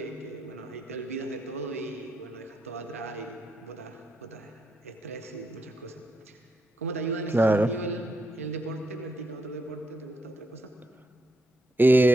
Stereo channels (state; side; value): normal; both; correlation 0.80